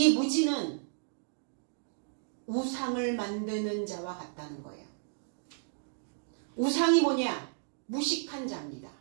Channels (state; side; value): silent; left; digital silence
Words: 무지는 우상을 만드는 자와 같다는 거예요. 우상이 뭐냐? 무식한 자입니다.